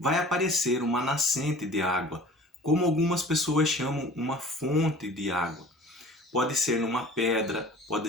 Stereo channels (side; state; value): both; normal; correlation 0.45